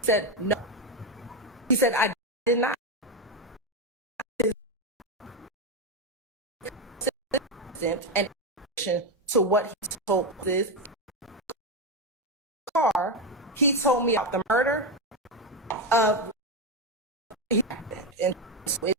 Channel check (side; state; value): both; normal; correlation 0.10